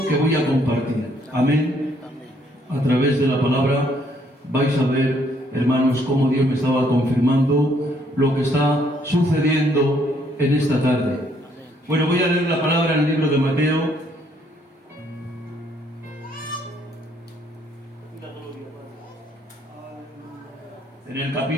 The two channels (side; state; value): both; normal; correlation 0.68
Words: que voy a compartir. Amén. A través de la palabra vais a ver, hermanos, cómo Dios me estaba confirmando lo que está sucediendo en esta tarde. Bueno, voy a leer la palabra en el libro de Mateo. En el